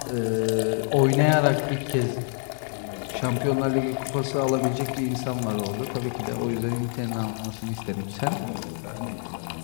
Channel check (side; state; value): right; silent; 57 dB below the other